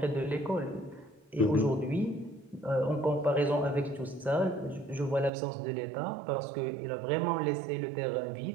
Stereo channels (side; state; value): left; drops out; at 5.3 s